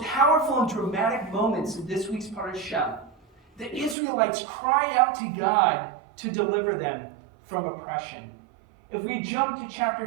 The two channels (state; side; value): drops out; left; at 4.0 s